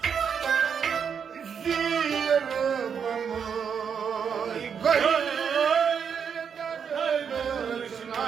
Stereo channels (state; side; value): quieter; left; 7.1 dB